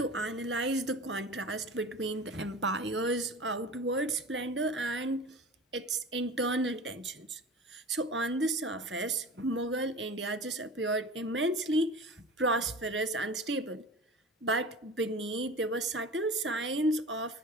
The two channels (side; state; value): both; normal; correlation 0.35